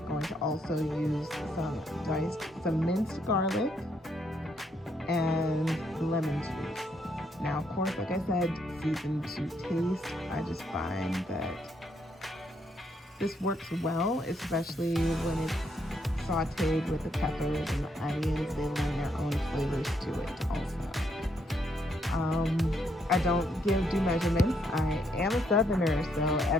going to also use some minced garlic and lemon juice. Now, of course, like I said, season to taste. I just find that this works well, especially when it's sauteed with the peppers and the onions. They lend their own flavors to it also. I don't do measurements. I am a Southerner, so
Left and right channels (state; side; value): normal; both; correlation 0.74